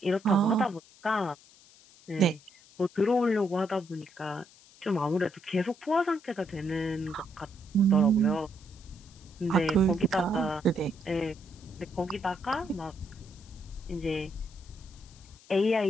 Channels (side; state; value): left; noise; hiss, 25 dB below the sound